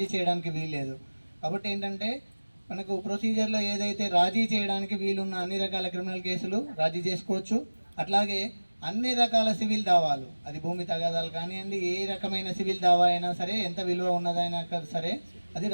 చేయడానికి వీల్లేదు. కాబట్టి ఏంటంటే మనకు ప్రొసీజర్లో ఏదైతే రాజీ చేయడానికి వీలున్న అన్ని రకాల క్రిమినల్ కేసులు రాజీ చేసుకోవచ్చు. అట్లాగే అన్ని రకాల సివిల్ దావాలు, అది భూమి తగాదాలు కానివ్వండి, ఏ రకమైన సివిల్ దావా అయినా సరే, ఎంత విలువ ఉన్నదైనా సరే అది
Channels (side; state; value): both; inverted; correlation -1.00